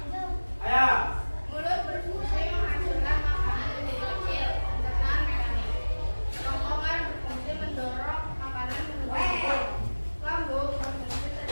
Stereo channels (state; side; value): inverted; both; correlation -1.00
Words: Ayo. Mulut berfungsi menghancurkan makanan menjadi kecil, pencernaan mekanik. Kerongkongan berfungsi mendorong makanan menuju mulut. Lambung berfungsi